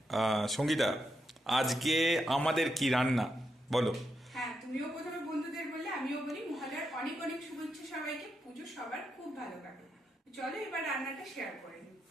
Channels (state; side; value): normal; both; correlation 0.83